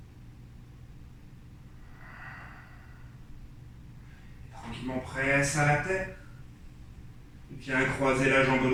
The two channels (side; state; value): both; identical; correlation 1.00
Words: Tranquillement presse à la terre. Viens croiser la jambe